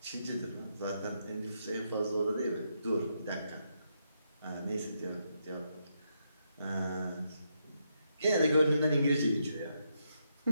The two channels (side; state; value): both; inverted; correlation -0.80